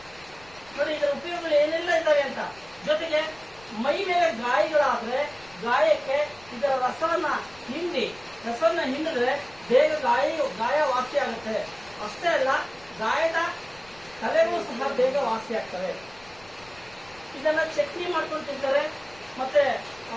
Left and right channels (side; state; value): left; noise; rumble, 25 dB below the sound